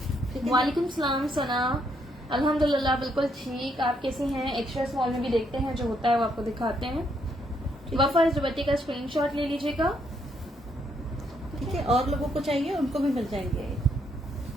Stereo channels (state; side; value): normal; both; correlation 0.74